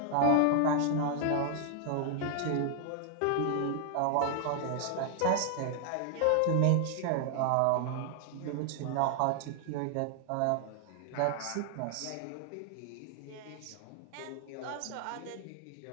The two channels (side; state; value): both; different; correlation 0.00